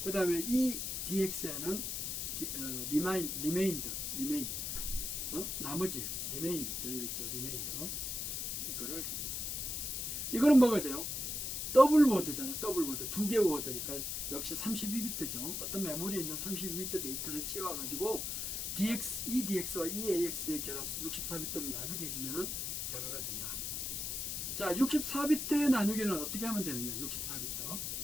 그 다음에 EDX에는 리메인드, 나머지 리메인 되는 거 있죠, 리메인더. 이거를 해줘. 이거는 뭐가 돼요? 더블 워드잖아요. 더블 워드. 두 개 워드니까 역시 32비트죠. 어떤 메모리에 있는 32비트 데이터를 채워가지고 EDX와 EAX의 결합 64비트로 나누게 해주면은 결과가 된다. 자, 64비트의 나누기는 어떻게 하면 되느냐? 64비트.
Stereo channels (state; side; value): noise; left; hiss, 3 dB below the sound